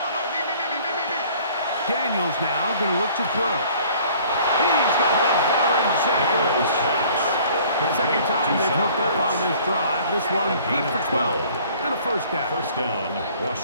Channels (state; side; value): inverted; both; correlation -0.53